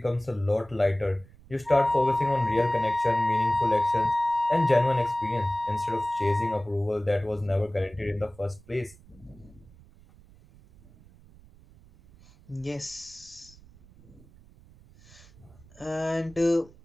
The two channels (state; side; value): noise; right; rumble, 24 dB below the sound